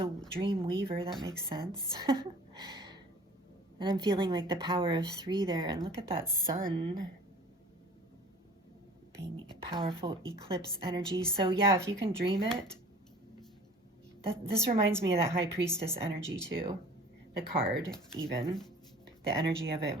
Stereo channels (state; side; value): normal; both; correlation 0.46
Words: dream weaver, that makes sense. And I'm feeling like the power of 3 there. And look at that sun being a powerful eclipse energy. So yeah, if you can dream it, this reminds me of that High Priestess energy too. The card even. The energy of it